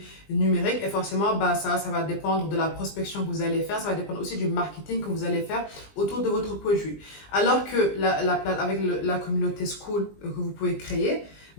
numérique, et forcément, ça va dépendre de la prospection que vous allez faire, ça va dépendre aussi du marketing que vous allez faire autour de votre produit. Alors que avec la communauté Skool que vous pouvez créer,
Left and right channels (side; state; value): right; late; 20 ms